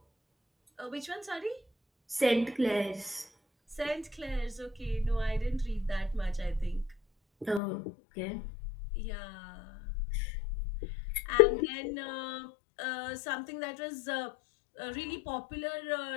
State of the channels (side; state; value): right; drops out; at 7.6 s